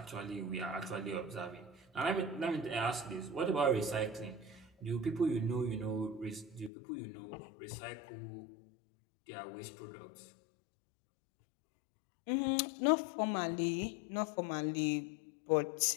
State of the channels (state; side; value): drops out; right; at 6.7 s